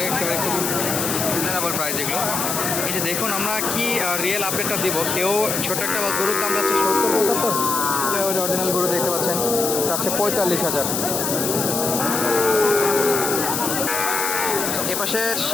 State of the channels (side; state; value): left; noise; hiss, 1 dB below the sound